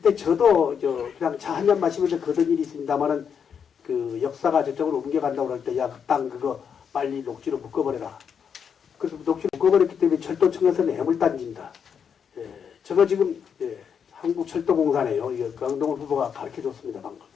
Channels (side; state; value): right; quieter; 7.2 dB